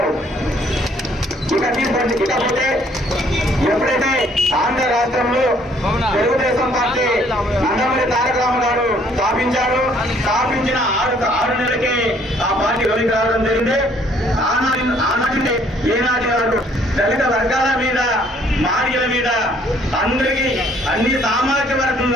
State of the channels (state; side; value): normal; both; correlation 0.62